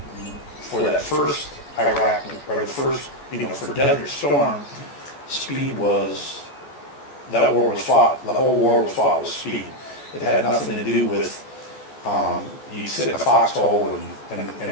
for that first Iraq, or the first, for Desert Storm, speed was, that war was fought, the whole war was fought with speed. It had nothing to do with, you sit in a foxhole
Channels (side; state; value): right; late; 14 ms